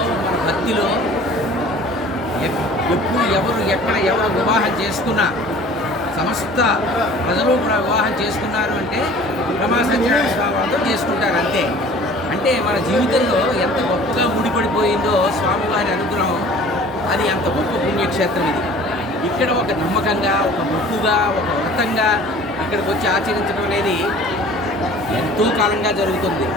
మన భక్తిలో ఎప్పుడు ఎవరు వివాహం చేసుకున్నా సమస్త ప్రజలు కూడా వివాహం చేసుకున్నారు అంటే రమా సత్యనారాయణ స్వామి వారితో చేసుకుంటారు అంతే. అంటే మన జీవితంలో ఎంత గొప్పగా ముడిపడిపోయిందో స్వామివారి అనుగ్రహం, అది అంత గొప్ప పుణ్యక్షేత్రం ఇది. ఇక్కడ ఒక నమ్మకంగా, ఒక మొక్కుగా, ఒక వ్రతంగా ఇక్కడికి వచ్చి ఆచరించడం అనేది ఎంతో కాలంగా జరుగుతుంది.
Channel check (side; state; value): both; normal; correlation 0.47